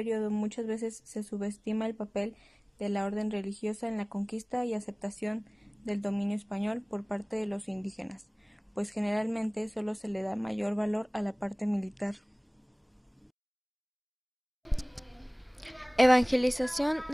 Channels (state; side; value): identical; both; correlation 1.00